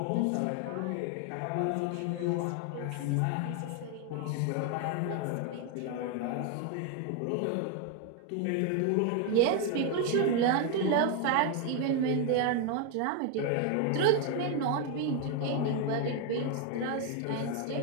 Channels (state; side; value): different; both; correlation 0.01